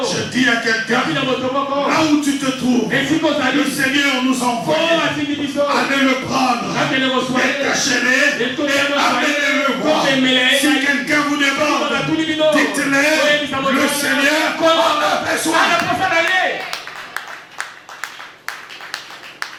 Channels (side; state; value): both; identical; correlation 1.00